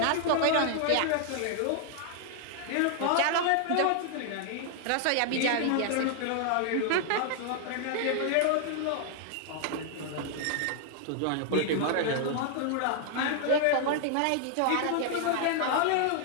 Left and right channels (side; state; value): both; different; correlation 0.00